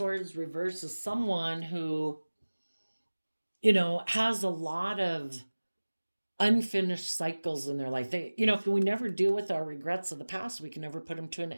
reverse as someone who, has a lot of unfinished cycles in their life. If we never deal with our regrets of the past, we can never put them to an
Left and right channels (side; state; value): both; inverted; correlation -1.00